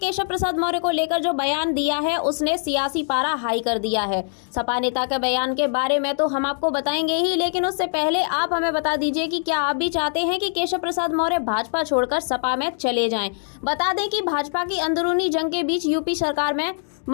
प्रसाद मौर्य को लेकर जो बयान दिया है उसने सियासी पारा हाई कर दिया है। सपा नेता के बयान के बारे में तो हम आपको बताएंगे ही, लेकिन उससे पहले आप हमें बता दीजिए कि क्या आप भी चाहते हैं कि केशव प्रसाद मौर्य भाजपा छोड़कर सपा में चले जाएं। बता दें कि भाजपा की अंदरूनी जंग के बीच यूपी सरकार में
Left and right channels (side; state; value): right; silent; digital silence